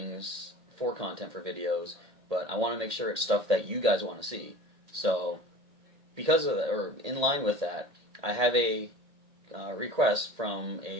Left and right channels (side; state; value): left; late; 1.8 ms